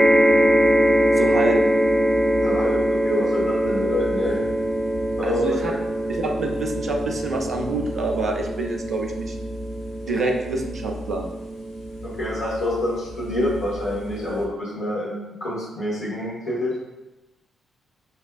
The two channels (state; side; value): normal; both; correlation 0.86